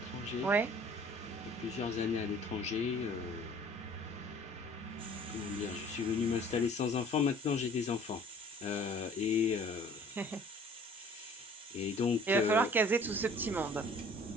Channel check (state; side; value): normal; both; correlation 0.51